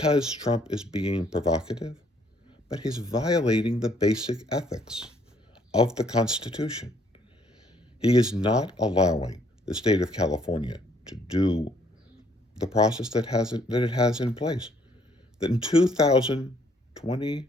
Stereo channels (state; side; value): normal; both; correlation 0.65